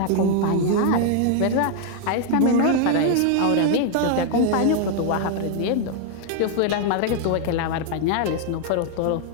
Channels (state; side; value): different; both; correlation 0.00